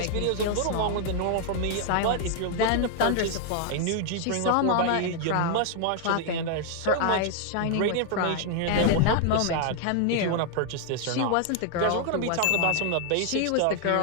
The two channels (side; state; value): both; different; correlation 0.00